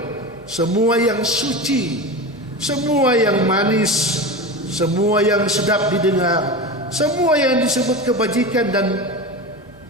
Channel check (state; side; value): normal; both; correlation 0.26